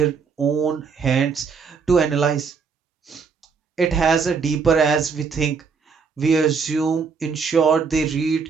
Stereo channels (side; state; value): left; quieter; 5.6 dB